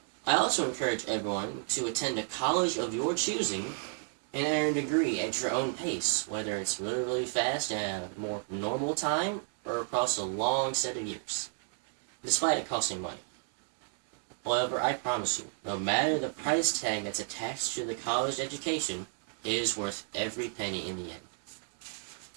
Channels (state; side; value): silent; left; 56 dB below the other